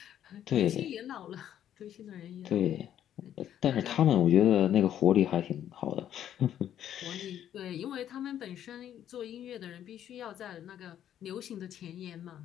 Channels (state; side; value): quieter; right; 10.6 dB